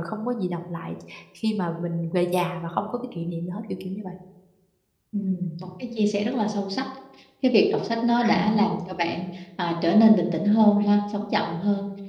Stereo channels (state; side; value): identical; both; correlation 1.00